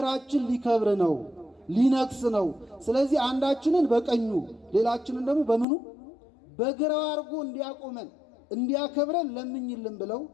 ሊከብር ነው፣ ሊነግስ ነው፣ ስለዚህ አንዳችንን በቀኙ ሌላችንን ደግሞ በምኑ በግራው አድርጎ እንዲያቆመን እንዲያከብረን ለምኝልን ብለው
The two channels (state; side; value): drops out; right; at 5.7 s